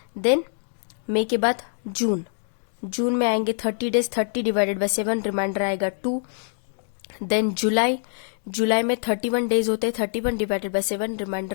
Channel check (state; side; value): silent; right; digital silence